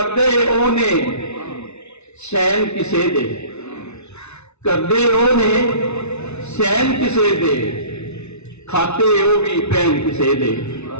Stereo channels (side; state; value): right; late; 0.81 ms